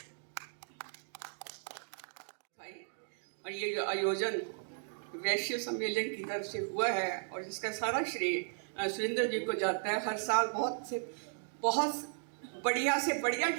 और ये जो आयोजन वैश्य सम्मेलन की तरफ से हुआ है और जिसका सारा श्रेय सुरेंद्र जी को जाता है। हर साल बहुत बढ़िया से बढ़िया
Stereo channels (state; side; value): silent; left; digital silence